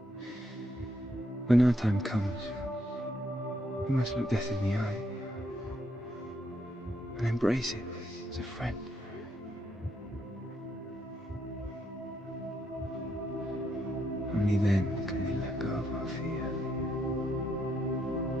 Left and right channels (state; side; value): normal; both; correlation 0.76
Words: When our time comes, we must look death in the eye and embrace it as a friend. Only then can we let go of our fear.